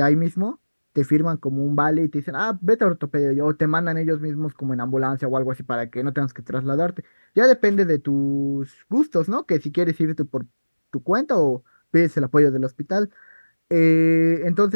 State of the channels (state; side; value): inverted; both; correlation -1.00